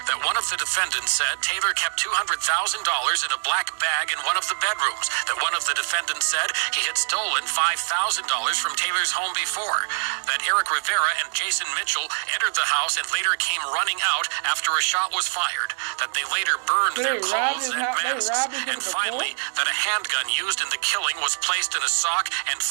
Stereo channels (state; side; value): silent; left; 62 dB below the other